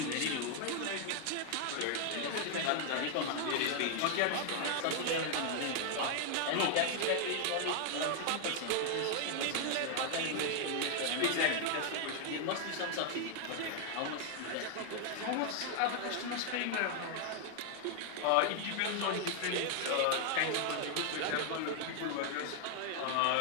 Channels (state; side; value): different; both; correlation 0.00